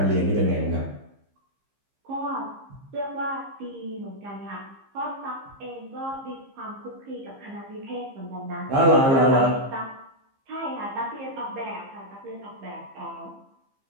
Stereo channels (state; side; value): late; left; 15 ms